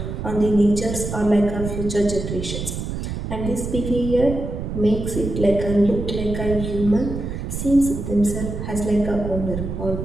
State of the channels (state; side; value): noise; right; rumble, 5 dB below the sound